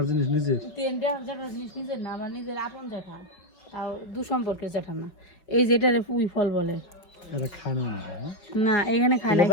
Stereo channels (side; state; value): right; late; 5.5 ms